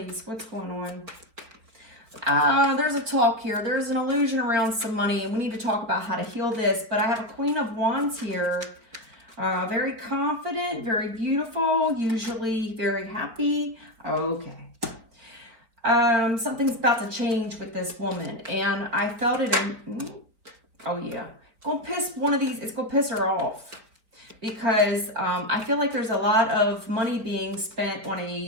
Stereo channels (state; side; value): late; left; 4.4 ms